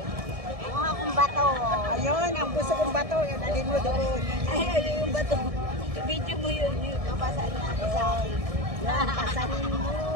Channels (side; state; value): left; late; 1.6 ms